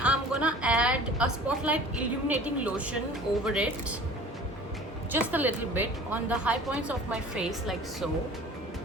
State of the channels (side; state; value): both; normal; correlation 0.44